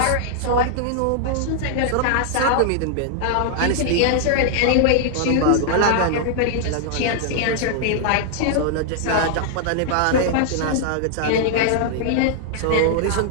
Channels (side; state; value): both; different; correlation -0.01